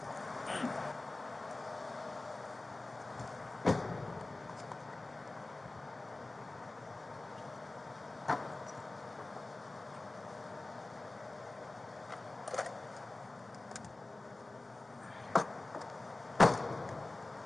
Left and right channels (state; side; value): quieter; right; 3.0 dB